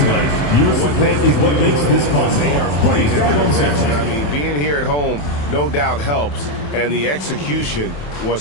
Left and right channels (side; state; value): right; late; 27 ms